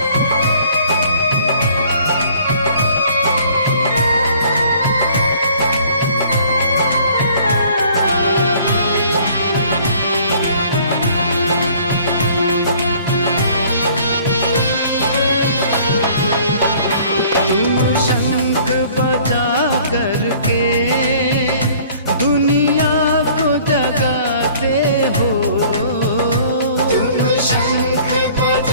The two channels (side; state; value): both; inverted; correlation -0.54